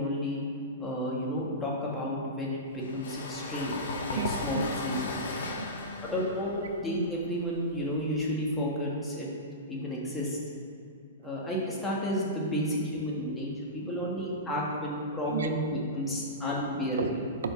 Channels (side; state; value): both; normal; correlation -0.17